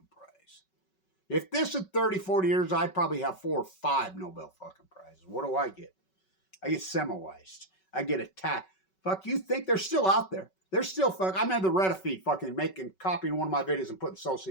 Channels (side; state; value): right; late; 5.3 ms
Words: prize. If this is 30, 40 years, I'd probably have 4 or 5 Nobel fucking prizes. What do I get? I get Semmelweis. I get attacked. Fuck, you think they're still out there? They're still I'm in the Reddit feed fucking copying one of my videos and putting